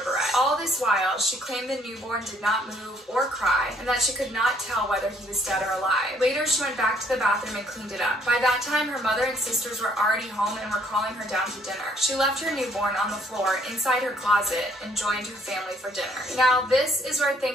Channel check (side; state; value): both; normal; correlation 0.64